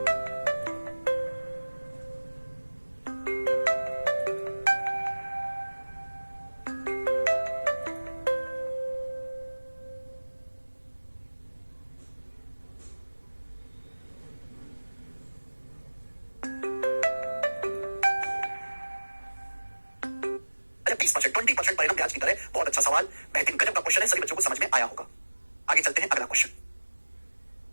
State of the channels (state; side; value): inverted; both; correlation -1.00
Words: अच्छा 20%, 20% परिणाम ब्याज की दर है। बहुत अच्छा सवाल, बेहतरीन गजब का क्वेश्चन है, सभी बच्चों को समझ में आया होगा। आगे चलते हैं, अगला क्वेश्चन